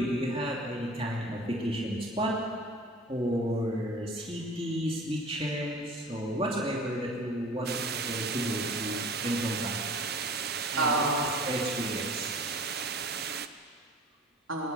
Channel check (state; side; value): normal; both; correlation 0.43